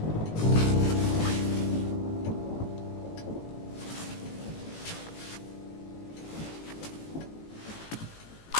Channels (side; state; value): right; late; 18 ms